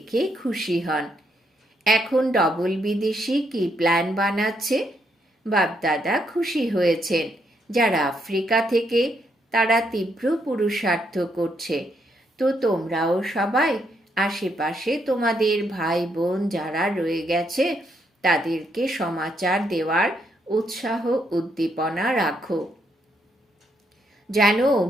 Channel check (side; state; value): both; normal; correlation 0.76